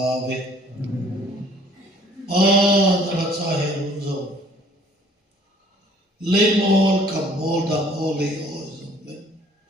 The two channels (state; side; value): normal; both; correlation 0.56